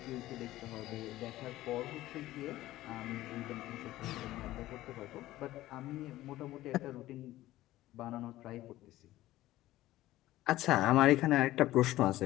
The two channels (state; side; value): quieter; right; 15.8 dB